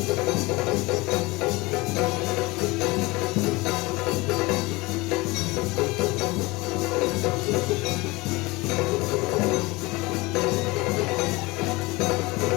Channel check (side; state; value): right; quieter; 23.1 dB